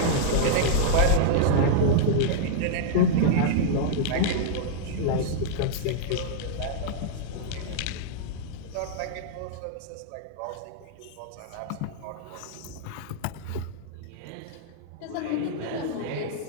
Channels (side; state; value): both; different; correlation -0.01